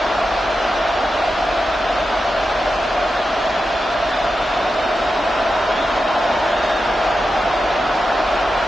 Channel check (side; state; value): both; normal; correlation 0.90